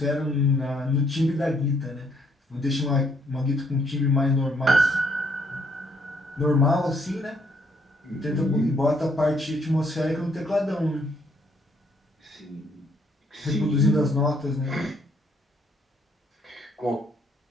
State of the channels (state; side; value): normal; both; correlation 0.69